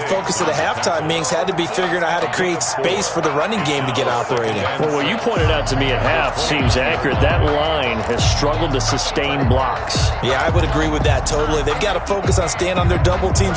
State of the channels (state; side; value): identical; both; correlation 1.00